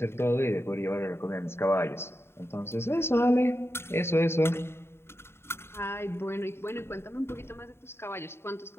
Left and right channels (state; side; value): late; right; 0.12 ms